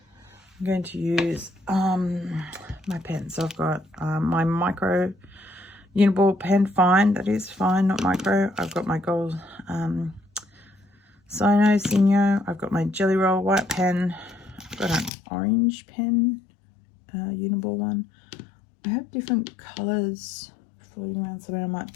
I'm going to use my pen. So I've got my micro uniball pen, fine, that is fine, not micro. I've got my gold Sino. I've got my Jelly Roll white pen. I've got an orange pen, uniball one. I have different colours floating around somewhere. I might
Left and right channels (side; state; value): right; drops out; at 15.1 s